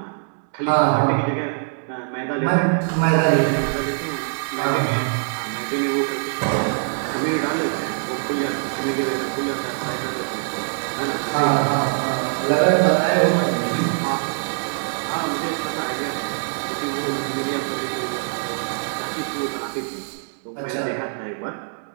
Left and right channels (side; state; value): left; silent; 63 dB below the other